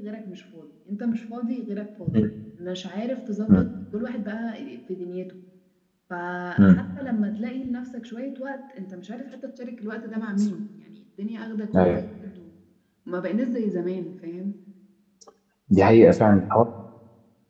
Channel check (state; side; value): identical; both; correlation 1.00